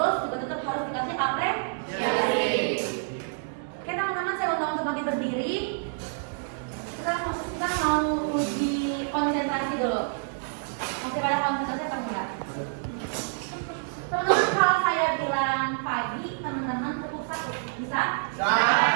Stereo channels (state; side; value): silent; left; digital silence